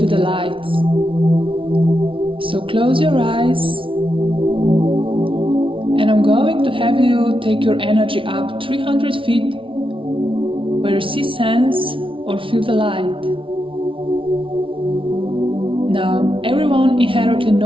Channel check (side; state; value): left; late; 0.25 ms